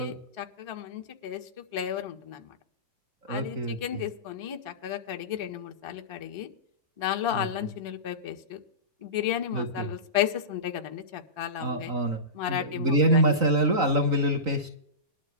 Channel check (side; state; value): left; late; 3.9 ms